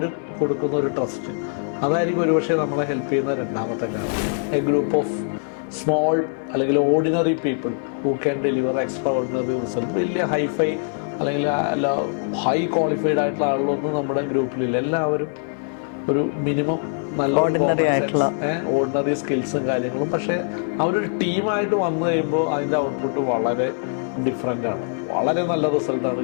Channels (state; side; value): silent; right; 64 dB below the other